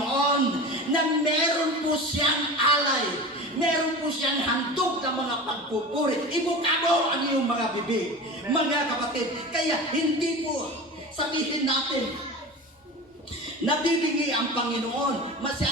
na meron po siyang alay, meron po siyang handog ng mga pagpupuri. Ibuka mo ang iyong mga bibig, mga kapatid. Kaya hindi po sabihin natin nabibigay ang Panginoon.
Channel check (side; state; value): both; normal; correlation 0.31